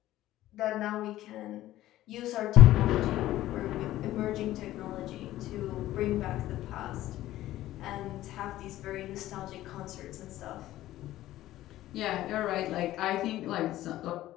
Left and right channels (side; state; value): right; quieter; 14.8 dB